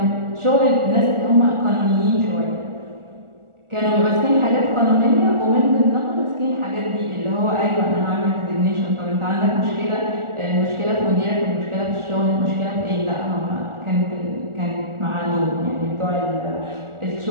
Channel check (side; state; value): left; late; 1.4 ms